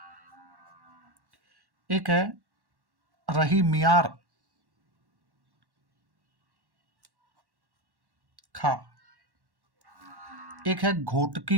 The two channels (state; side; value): late; left; 1.1 ms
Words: एक है रही मियार खा, एक है